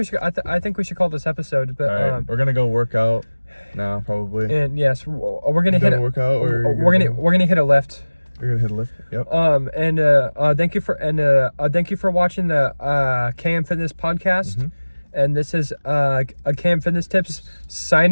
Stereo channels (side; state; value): both; inverted; correlation -1.00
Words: we should call this episode. But All right. We're gonna go work out now, probably. and yes, we're gonna You hit done a workout, or we're gonna hit a lift. You're gonna hit a lift. Yep. And thank you for watching the KM Fitness podcast. And this is KM Fitness Tips